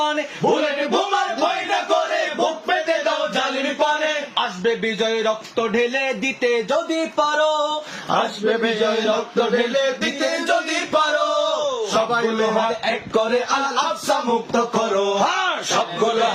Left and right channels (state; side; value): identical; both; correlation 1.00